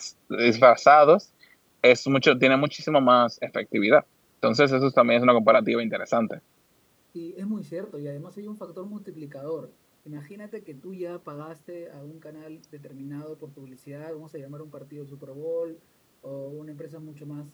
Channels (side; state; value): both; identical; correlation 1.00